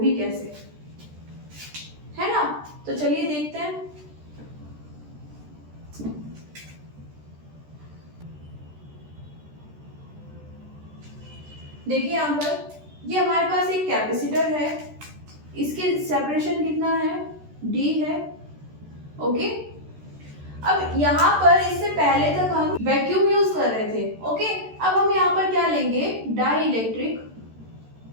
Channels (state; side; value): late; left; 13 ms